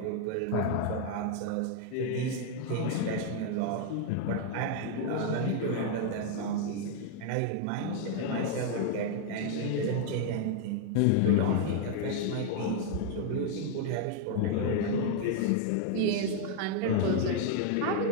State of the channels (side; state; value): both; different; correlation 0.00